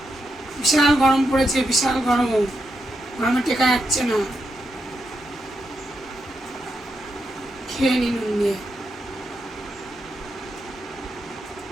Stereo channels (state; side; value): normal; both; correlation 0.83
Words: বিশাল গরম পড়েছে, বিশাল গরম, গরমে টেকা যাচ্ছে না। খেয়ে নি নুন দিয়ে।